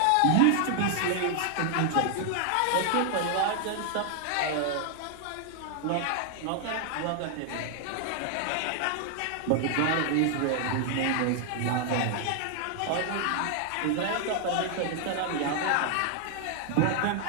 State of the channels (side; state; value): both; different; correlation 0.00